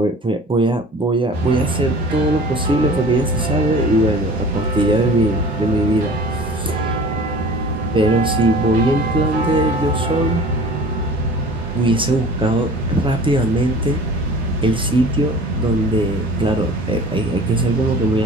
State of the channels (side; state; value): both; normal; correlation 0.42